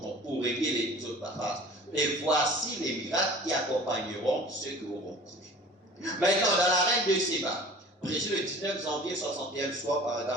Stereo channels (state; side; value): normal; both; correlation 0.45